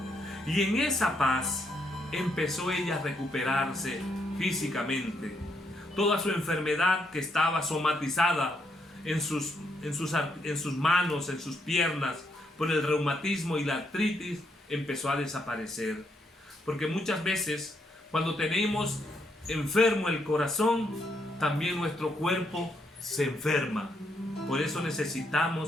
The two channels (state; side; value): normal; both; correlation 0.76